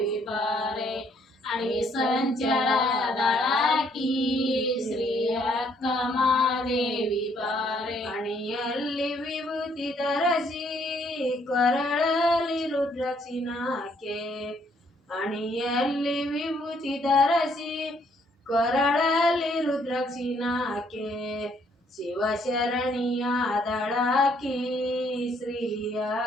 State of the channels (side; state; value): both; normal; correlation 0.67